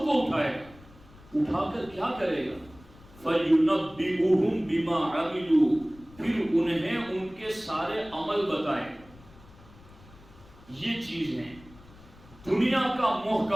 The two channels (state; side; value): noise; left; rumble, 23 dB below the sound